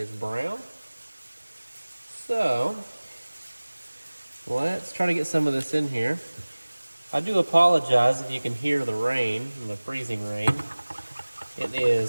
brown. So let's try to get some of this in here. I do apologize if you can hear the rain, the freezing rain. It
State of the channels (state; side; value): inverted; both; correlation -1.00